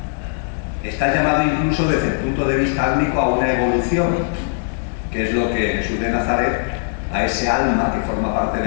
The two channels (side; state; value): right; silent; digital silence